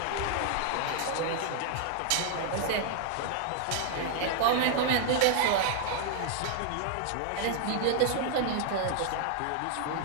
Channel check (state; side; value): different; both; correlation 0.00